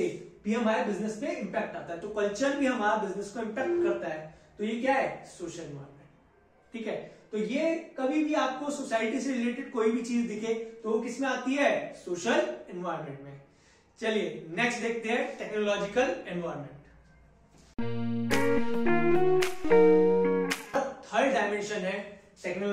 भी हमारे बिजनेस पे इंपैक्ट आता है। तो कल्चर भी हमारा बिजनेस को इंपैक्ट करता है। तो ये क्या है, सोशल एनवायरनमेंट। ठीक है, तो ये कभी भी आपको सोसाइटी से रिलेटेड कोई भी चीज दिखे तो वो किसमें आती है, सोशल एनवायरनमेंट में। चलिए नेक्स्ट देखते हैं टेक्नोलॉजिकल एनवायरनमेंट। थर्ड डायमेंशन है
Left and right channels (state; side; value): identical; both; correlation 1.00